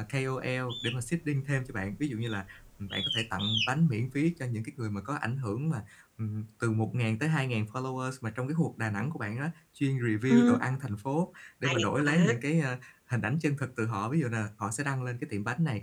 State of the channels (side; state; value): both; identical; correlation 1.00